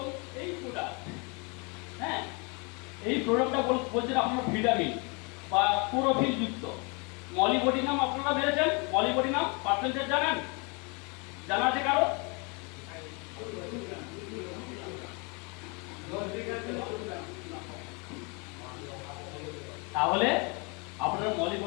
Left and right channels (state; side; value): quieter; right; 31.7 dB